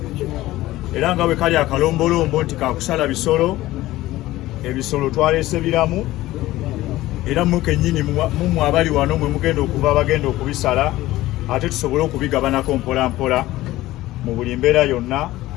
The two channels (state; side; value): quieter; right; 16.7 dB